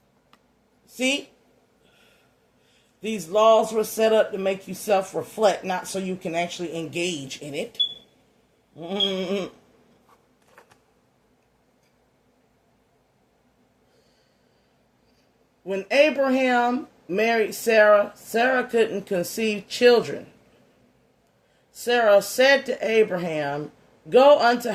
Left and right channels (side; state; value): both; identical; correlation 1.00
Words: See? These laws were set up to make you self-reflect, not so you can actually engage in it. When Abraham married Sarah, Sarah couldn't conceive children. Sarah said to Abraham, "Go unto